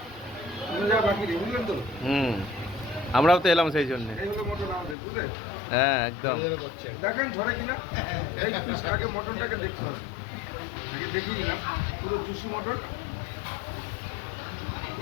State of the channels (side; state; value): right; drops out; at 5.0 s